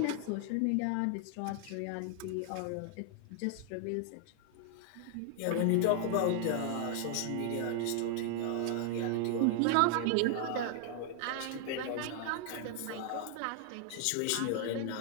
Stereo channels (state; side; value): different; both; correlation 0.00